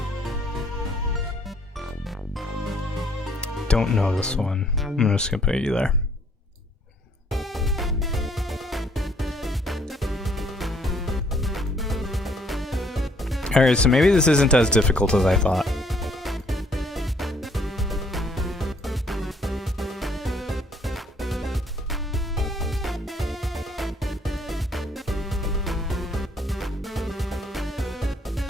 Don't know this one. I'm just gonna put you there. Alright, so maybe this isn't as difficult as I thought.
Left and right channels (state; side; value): normal; both; correlation 0.64